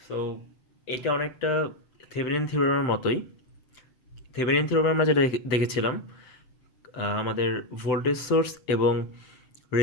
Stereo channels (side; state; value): right; late; 7.9 ms